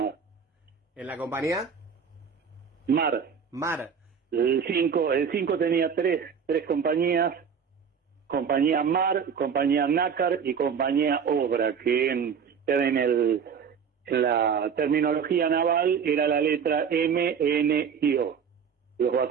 ¿en la compañía? MAR. Mar. El cinco tenía tres compañías: compañía MAR, compañía NACAR y compañía OBRA, que en la terminología naval era la letra M, N y O. Los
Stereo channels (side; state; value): left; quieter; 6.8 dB